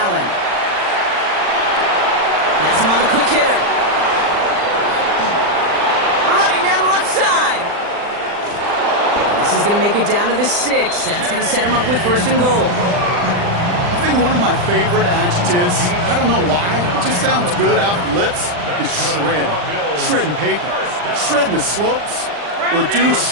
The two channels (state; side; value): late; left; 40 ms